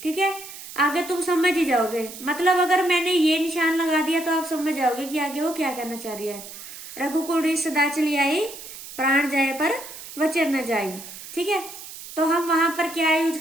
ठीक है, आगे तुम समझ ही जाओगे, मतलब अगर मैंने ये निशान लगा दिया तो आप समझ जाओगे कि आगे वो क्या कहना चाह रही है। रघुकुल रीत सदा चली आई, प्राण जाए पर वचन न जाई। ठीक है, तो हम वहां पर क्या यूज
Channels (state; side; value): noise; right; hiss, 13 dB below the sound